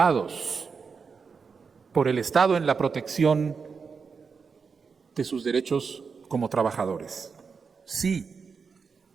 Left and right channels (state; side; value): quieter; left; 5.4 dB